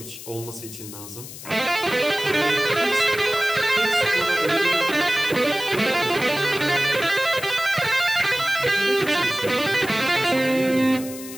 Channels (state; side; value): noise; left; hiss, 13 dB below the sound